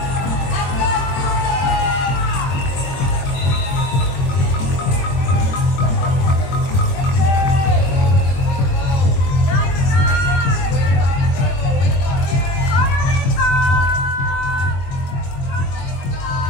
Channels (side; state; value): right; late; 22 ms